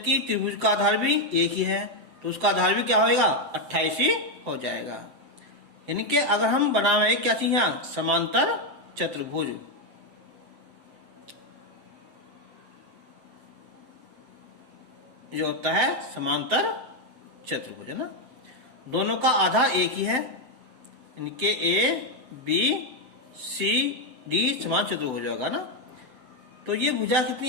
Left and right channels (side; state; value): left; late; 7.8 ms